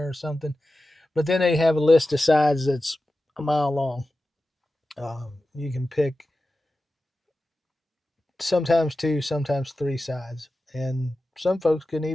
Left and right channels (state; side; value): normal; both; correlation 0.94